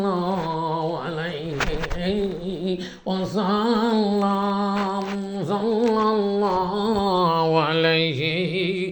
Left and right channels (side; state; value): both; identical; correlation 1.00